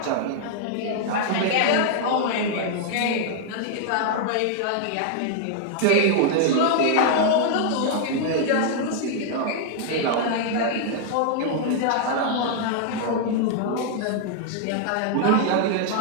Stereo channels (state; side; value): different; both; correlation -0.01